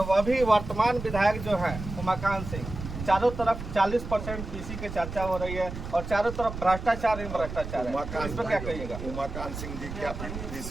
भी वर्तमान विधायक जो है उमाकांत सिंह, चारों तरफ 40% पीसी की चर्चा हो रही है और चारों तरफ भ्रष्टाचार ही भ्रष्टाचार है। इस पर क्या कहिएगा? उमाकांत सिंह जी क्या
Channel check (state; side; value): noise; right; rumble, 8 dB below the sound